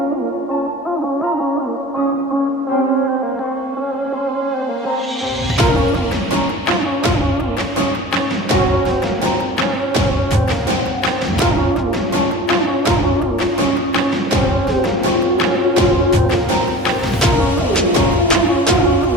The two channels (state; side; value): normal; both; correlation 0.41